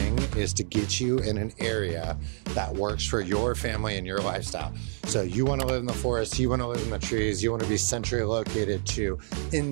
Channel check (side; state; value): left; silent; 59 dB below the other